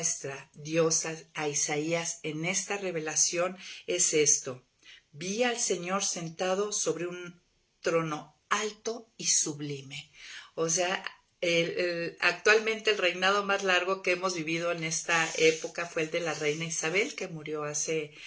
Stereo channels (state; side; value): identical; both; correlation 1.00